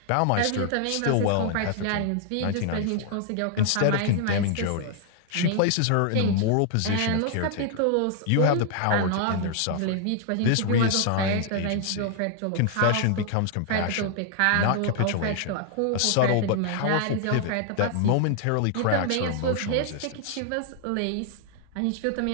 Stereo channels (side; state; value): both; different; correlation 0.00